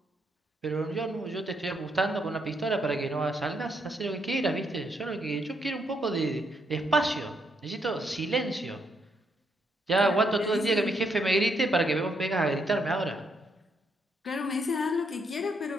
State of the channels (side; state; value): both; normal; correlation 0.76